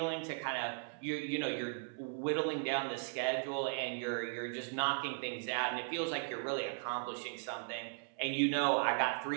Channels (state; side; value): silent; left; 53 dB below the other